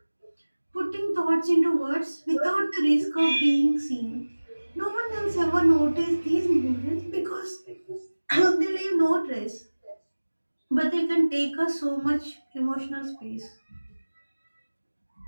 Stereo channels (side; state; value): both; inverted; correlation -1.00